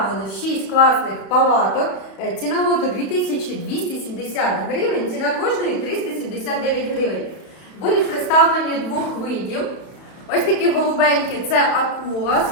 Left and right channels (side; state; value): right; late; 32 ms